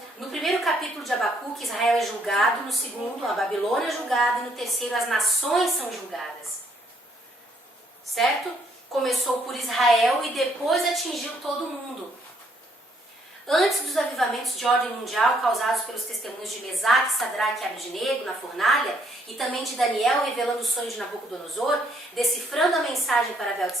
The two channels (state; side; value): normal; both; correlation 0.69